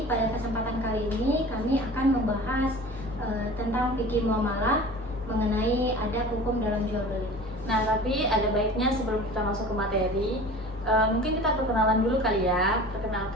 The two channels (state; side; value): normal; both; correlation 0.40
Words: pada kesempatan kali ini kami akan membahas tentang fikih muamalah mengenai adab hukum dalam jual beli. Nah, tapi ada baiknya sebelum kita masuk ke materi, mungkin kita perkenalan dulu kali ya.